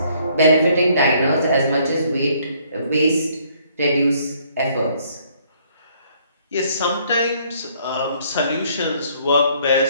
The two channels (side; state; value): both; inverted; correlation -0.64